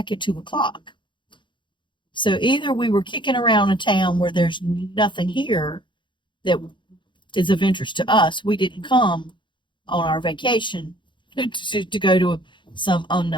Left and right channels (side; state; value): right; late; 0.23 ms